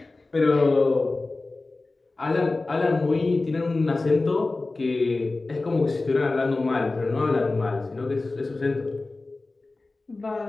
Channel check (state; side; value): quieter; right; 3.3 dB